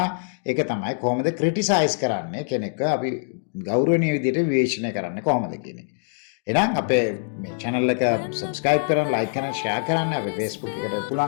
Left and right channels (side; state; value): right; silent; digital silence